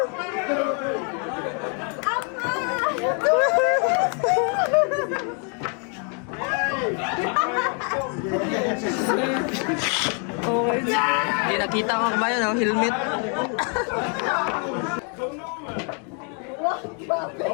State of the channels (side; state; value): right; quieter; 39.9 dB